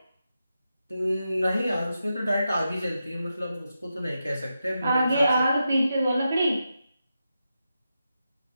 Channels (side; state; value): both; inverted; correlation -0.88